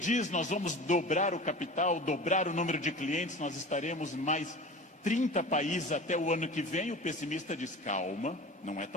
nós vamos dobrar o capital, dobrar o número de clientes, nós estaremos em mais 30 países até o ano que vem, o pessimista diz: calma, não é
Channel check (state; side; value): normal; both; correlation 0.36